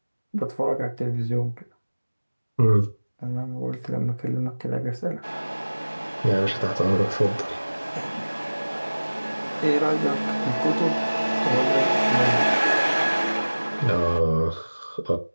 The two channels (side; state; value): both; inverted; correlation -1.00